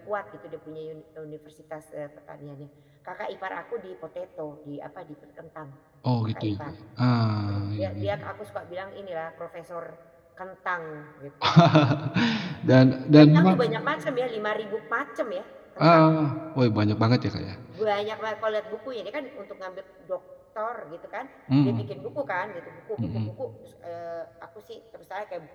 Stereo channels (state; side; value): identical; both; correlation 1.00